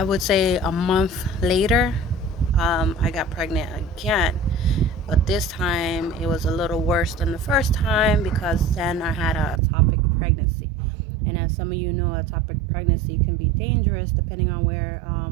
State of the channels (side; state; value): left; drops out; at 9.6 s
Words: would say a month later, I got pregnant again. But this time it was a little worse than the first time because then I had a ectopic pregnancy. And as some of you know, ectopic pregnancy can be dangerous depending on where